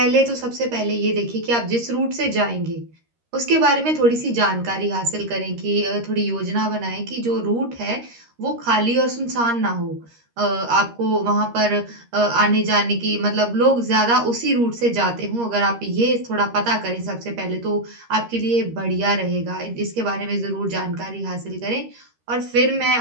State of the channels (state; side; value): late; left; 13 ms